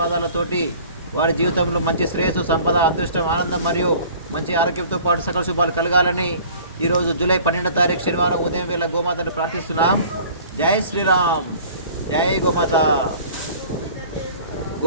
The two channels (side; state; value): both; inverted; correlation -0.48